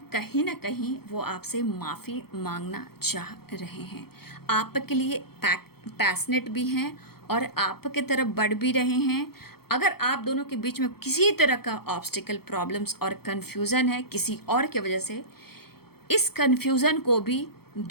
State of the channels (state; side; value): late; right; 0.95 ms